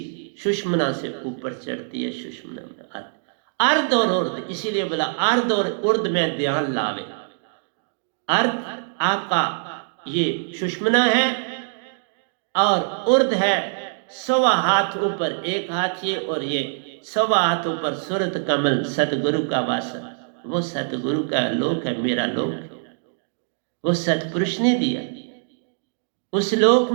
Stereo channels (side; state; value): left; silent; digital silence